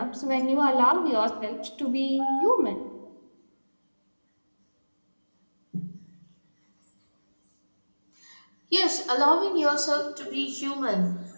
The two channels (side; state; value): both; inverted; correlation -1.00